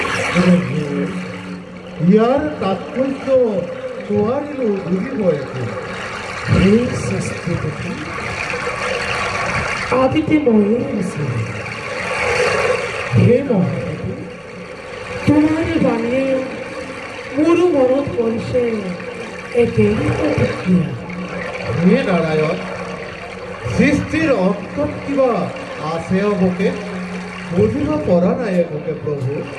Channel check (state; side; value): identical; both; correlation 1.00